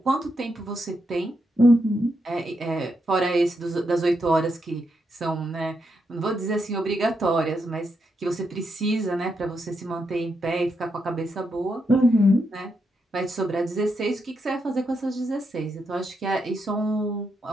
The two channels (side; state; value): both; normal; correlation 0.82